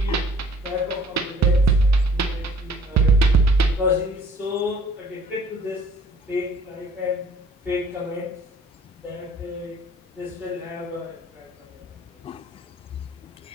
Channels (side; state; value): both; normal; correlation 0.55